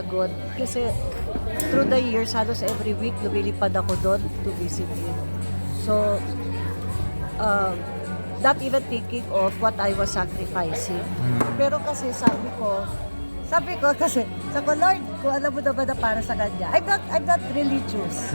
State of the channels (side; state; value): both; inverted; correlation -1.00